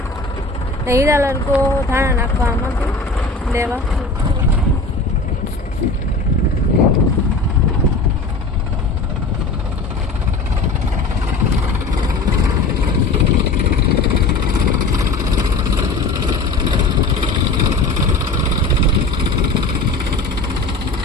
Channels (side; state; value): right; quieter; 3.4 dB